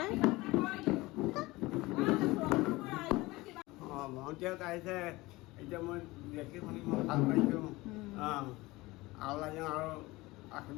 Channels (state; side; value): quieter; right; 20.9 dB